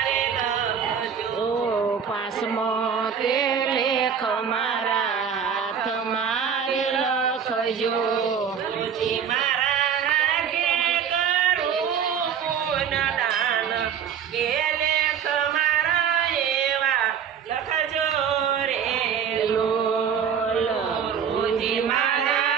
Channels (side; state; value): left; quieter; 7.6 dB